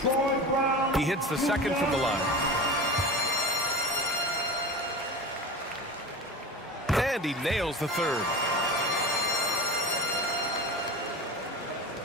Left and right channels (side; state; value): both; normal; correlation 0.31